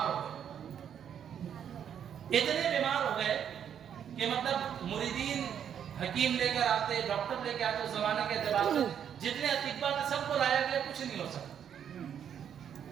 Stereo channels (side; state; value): left; quieter; 8.8 dB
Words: ہو گئے، اتنے بیمار ہو گئے کہ مطلب مریدین حکیم لے کر آتے، ڈاکٹر لے کے آتے، اس زمانے کے اعتبار سے جتنے اطباء تھے سب کو لایا گیا، کچھ نہیں ہو سکتا۔